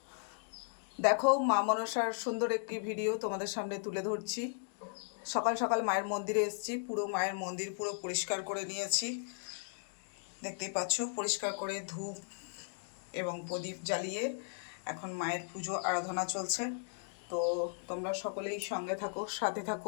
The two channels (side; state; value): right; silent; digital silence